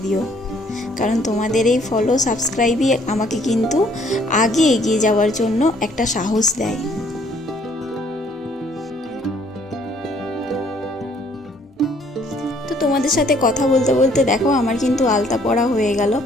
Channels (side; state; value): both; normal; correlation 0.63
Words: দিও, কারণ তোমাদের এই ফলো সাবস্ক্রাইবই আমাকে কিন্তু আগে এগিয়ে যাওয়ার জন্য একটা সাহস দেয়। তো তোমাদের সাথে কথা বলতে বলতে দেখো আমার কিন্তু আলতা পরা হয়ে গেল।